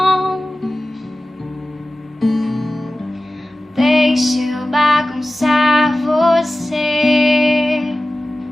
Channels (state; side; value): normal; both; correlation 0.96